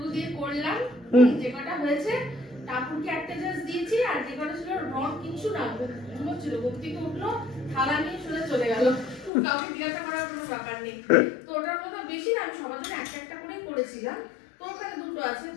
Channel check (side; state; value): right; drops out; at 9.3 s